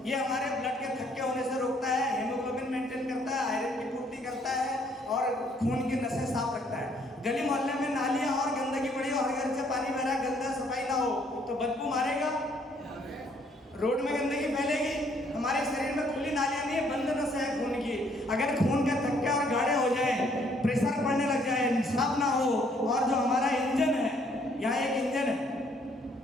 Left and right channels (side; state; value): both; normal; correlation 0.66